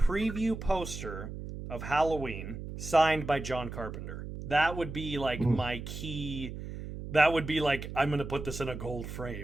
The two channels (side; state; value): right; noise; hum, 9 dB below the sound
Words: poster of Halloween signed by John Carpenter. That would be, like, my key. That would be like, I'm going to put this in a gold